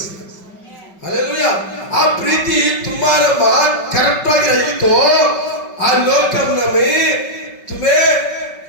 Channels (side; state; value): right; late; 5.3 ms